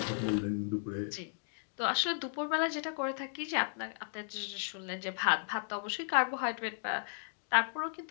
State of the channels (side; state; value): right; silent; digital silence